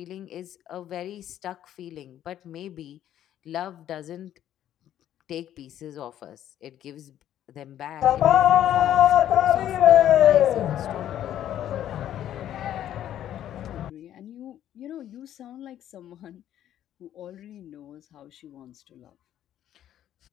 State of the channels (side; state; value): right; quieter; 11.4 dB